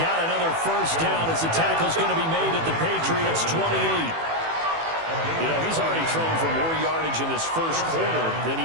another first down as the tackle's going to be made at the Patriots' 28. You know, he's already thrown for more yardage in this first quarter than he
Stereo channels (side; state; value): left; late; 18 ms